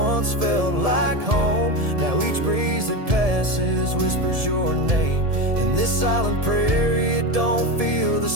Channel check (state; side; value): late; left; 1.7 ms